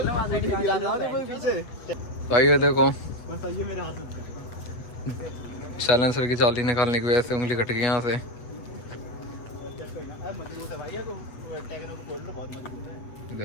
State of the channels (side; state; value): right; late; 8.2 ms